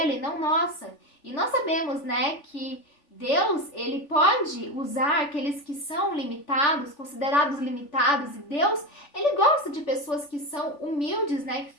não nossa. E nós sabemos, né, que Deus, ele pode usar aqueles que são limitados, considerados limitados, e Deus, ele gosta de pessoas que são humildes, né, que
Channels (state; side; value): late; right; 3.4 ms